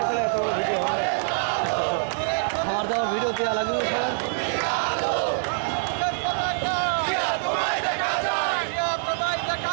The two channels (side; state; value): left; silent; 62 dB below the other